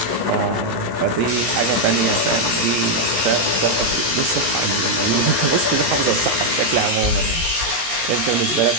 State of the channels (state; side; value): late; left; 16 ms